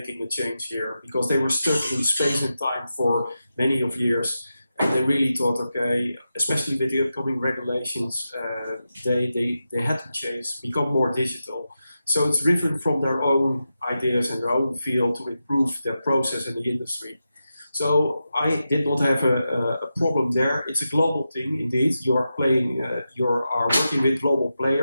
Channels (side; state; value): both; inverted; correlation -0.90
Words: a change here, because they were stuck in space and time for many of years, and they really thought, okay, especially with the upcoming regulations, they had to change, become more digital. So it's driven from their own ideas and their own field to improve their process in the industry. So I did not have a problem there. It's a global thing, indeed. You are working with global